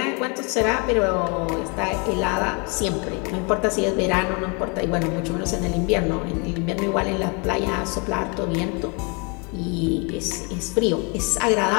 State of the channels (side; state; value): right; quieter; 32.9 dB